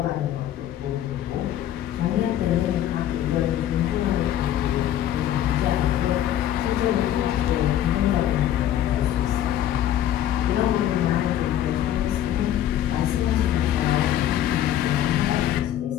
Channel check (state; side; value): quieter; right; 11.8 dB